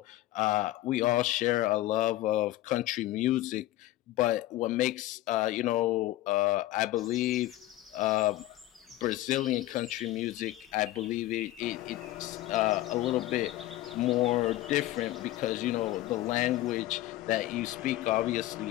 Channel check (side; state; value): right; quieter; 15.8 dB